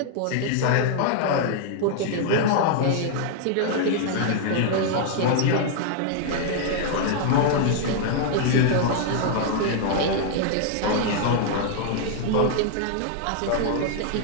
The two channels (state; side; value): different; both; correlation 0.00